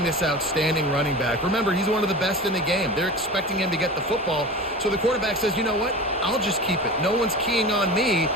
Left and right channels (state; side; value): normal; both; correlation 0.33